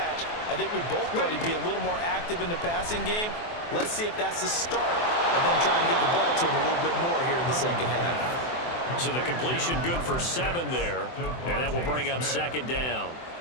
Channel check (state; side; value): late; right; 24 ms